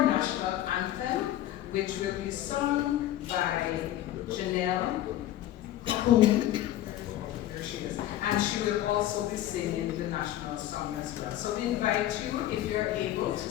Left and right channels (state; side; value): quieter; right; 13.4 dB